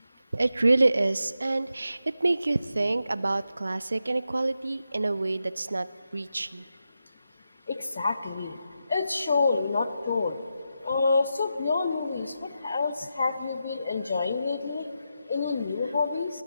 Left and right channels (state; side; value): inverted; both; correlation -0.87